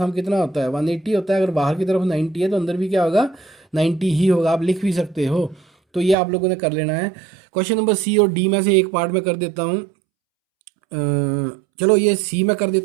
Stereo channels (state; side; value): drops out; left; at 6.2 s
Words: कितना होता है 180 होता है। अगर बाहर की तरफ 90 है, तो अंदर भी क्या होगा 90 ही होगा। आप लिख भी सकते हो। तो ये आप लोगों ने कर लेना है। क्वेश्चन नंबर सी और डी में से एक पार्ट में कर देता हूँ। चलो ये सी में कर